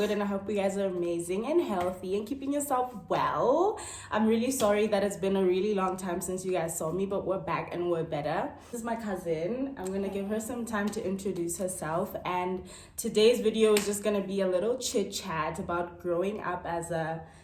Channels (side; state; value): both; identical; correlation 1.00